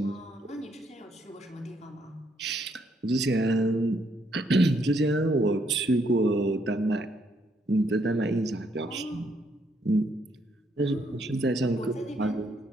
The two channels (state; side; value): normal; both; correlation 0.72